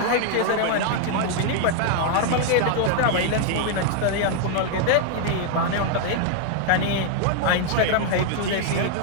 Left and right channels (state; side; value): different; both; correlation 0.00